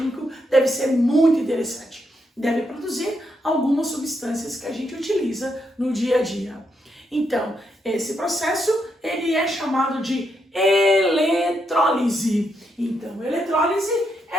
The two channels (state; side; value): normal; both; correlation 0.79